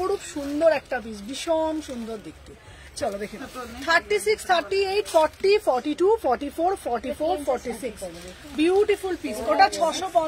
সুন্দর একটা পিস, ভীষণ সুন্দর দেখতে। চলো দেখে নাও 36, 38, 40, 42, 44, 44, 46 বিউটিফুল পিস। ওটা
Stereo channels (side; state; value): both; identical; correlation 1.00